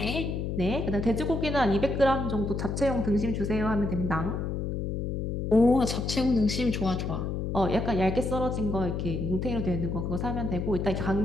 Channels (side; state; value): left; noise; hum, 2 dB below the sound